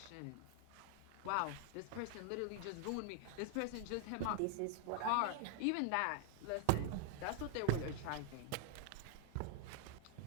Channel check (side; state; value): both; different; correlation 0.00